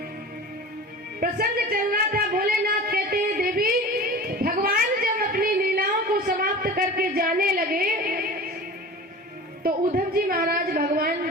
प्रसंग चल रहा था। भोलेनाथ कहते हैं, देवी भगवान जब अपनी लीलाओं को समाप्त करके जाने लगे तो उद्धव जी महाराज भगवान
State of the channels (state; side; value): normal; both; correlation 0.36